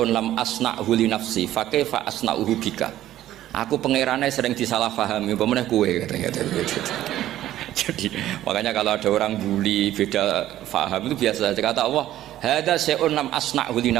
lam asna'hu li nafsi fa kaifa asna'uhu bika. Aku pangerane sering disalahpahami pemenah kowe katanya. Jadi makanya kalau ada orang bully beda faham itu biasa saja. Kata Allah hadza syai'un lam asna'hu li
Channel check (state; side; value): quieter; left; 13.3 dB